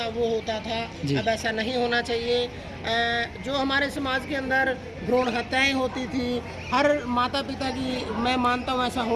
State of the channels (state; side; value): identical; both; correlation 1.00